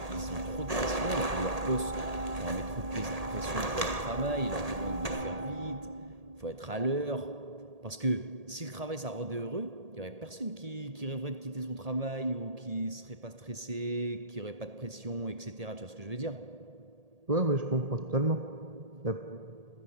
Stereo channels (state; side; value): late; left; 1.8 ms